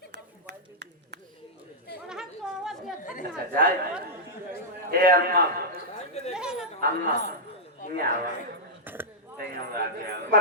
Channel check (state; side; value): normal; both; correlation -0.08